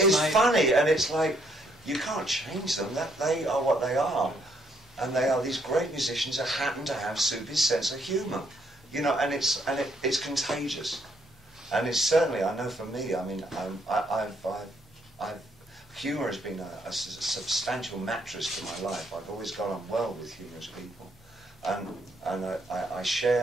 funny, and it's like you can't change them. That they are what they are, and they are these great musicians that happen to have Soupy's sense of humour. And it's contagious. And it's certainly, I know for me, I mean, humour has been a substantial mattress to my life. I've always got on well with humorous people, and I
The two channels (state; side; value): normal; both; correlation 0.71